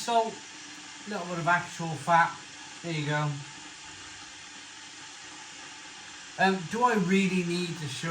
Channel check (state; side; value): identical; both; correlation 1.00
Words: A little bit of actual fat. There you go. Do I really need to